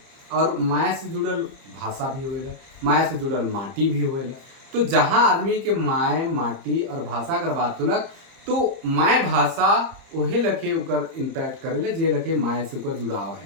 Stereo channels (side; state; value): left; late; 30 ms